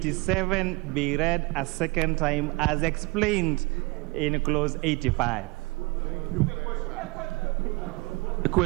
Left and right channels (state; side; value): quieter; left; 25.1 dB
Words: be read a second time as explained in clause 85. The